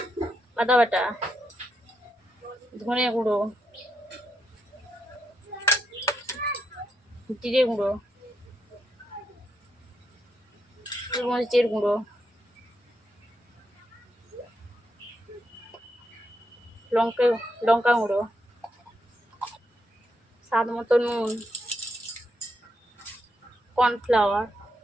আদা বাটা, ধনে গুঁড়ো, জিরে গুঁড়ো, গোলমরিচের গুঁড়ো, লঙ্কা গুঁড়ো, স্বাদ মতো নুন, কর্নফ্লাওয়ার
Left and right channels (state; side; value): normal; both; correlation 0.81